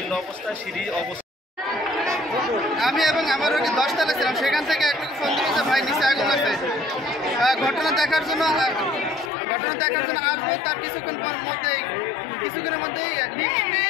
অবস্থা, সিঁড়ি অবস্থা। আমি এবং আমার রোগী 10 তলায় ছিলাম, সেখান থেকে একটু ফোন দিয়েছে ভাই নিচে আগুন লাগছে। ঘটনা দেখার জন্য আসবো। তার কিছুক্ষণের মধ্যেই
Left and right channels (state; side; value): drops out; right; at 9.3 s